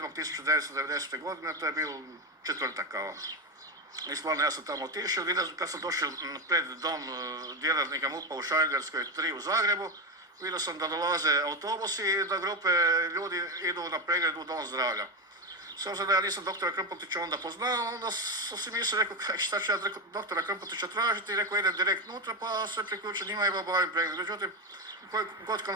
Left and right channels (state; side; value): normal; both; correlation 0.14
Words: godine, to je bio četvrtak kao. I stvarno ja sam tamo otišao, kad sam došao pred dom djelatnika MUP-a u Šarengradskoj 3 u Zagrebu, vidio sam da dolaze autobusi i da grupe ljudi idu na pregled u Dom zdravlja. S obzirom da ja nisam doktora Krmpotića onda poznao, onda sam si mislio, rekao, šta ću ja doktora Krmpotića tražiti, i rekao, idem direkt unutra, pa se priključim njima i obavim pregled. Međutim, koji god